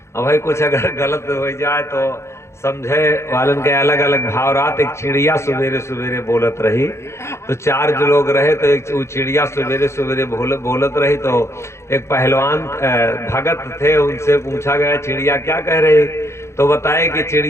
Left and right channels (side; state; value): right; late; 0.13 ms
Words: अब भाई कुछ अगर गलत हो जाए तो समझे वालन के अलग अलग भाव रात। एक चिड़िया सवेरे सवेरे बोलत रही, तो 4 जो लोग रहे, तो एक चिड़िया सवेरे सवेरे बोलत रही। तो एक पहलवान भगत थे, उनसे पूछा गया चिड़िया क्या कह रही, तो बताए कि